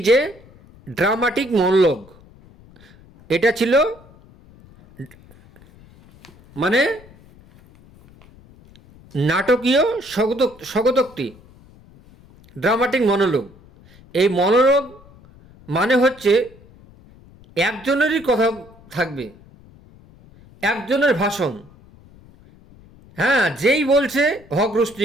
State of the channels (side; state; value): left; noise; rumble, 25 dB below the sound